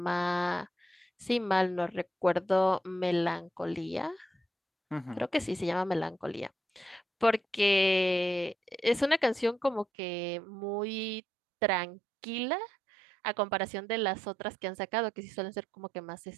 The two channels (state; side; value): drops out; left; at 9.9 s